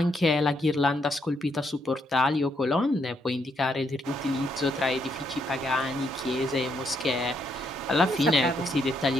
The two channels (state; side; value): normal; both; correlation 0.76